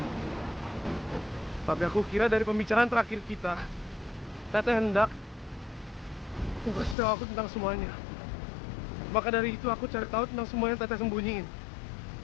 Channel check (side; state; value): right; drops out; at 7.0 s